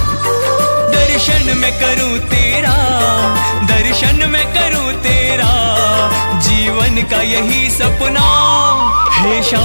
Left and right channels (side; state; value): both; inverted; correlation -1.00